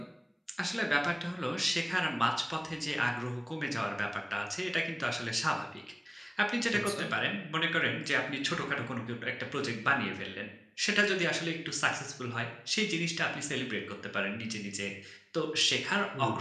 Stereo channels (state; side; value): identical; both; correlation 1.00